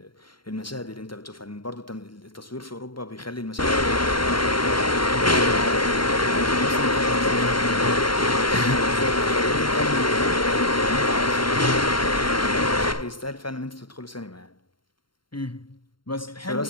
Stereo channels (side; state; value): right; late; 0.73 ms